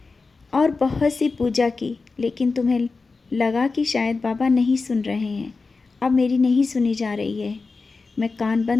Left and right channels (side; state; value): right; quieter; 4.1 dB